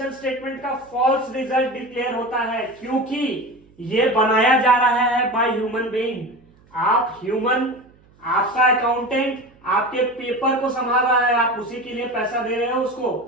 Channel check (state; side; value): noise; right; hum, 30 dB below the sound